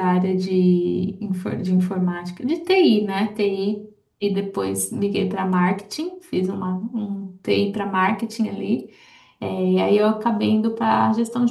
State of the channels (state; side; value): identical; both; correlation 1.00